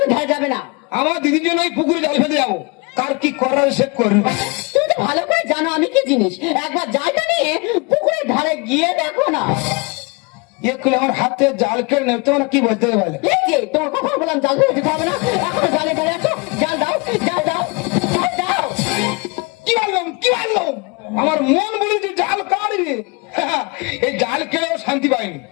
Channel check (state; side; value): quieter; right; 28.7 dB